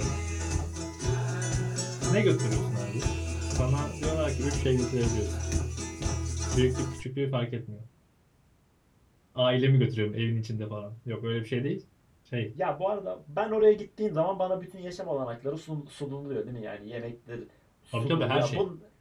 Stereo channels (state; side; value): identical; both; correlation 1.00